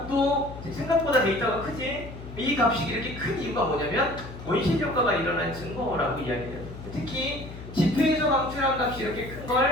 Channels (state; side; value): noise; left; hum, 13 dB below the sound